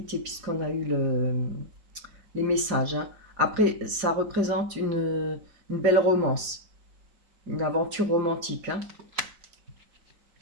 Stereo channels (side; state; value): left; late; 5.0 ms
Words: puisqu'on a eu les messages. Hein. Après, ça représente une belle romance, une aventure romantique. Hein.